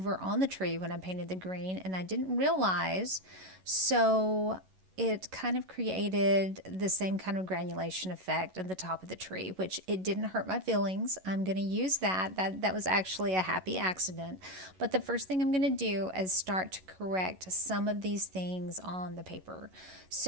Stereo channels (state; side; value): late; left; 11 ms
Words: on the tree when I painted the green, and I didn't realize, so it kind of created the same kind of granulation effect at the top of the tree, which it didn't hurt my feelings. I'm going to use that. That was actually a happy accident. But the first thing I'm going to do is start to correct some of these things on the paper.